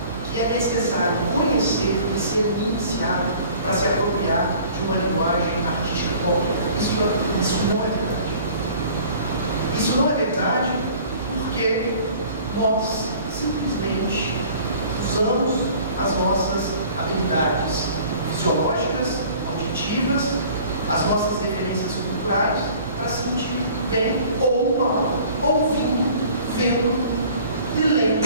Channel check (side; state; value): both; inverted; correlation -0.49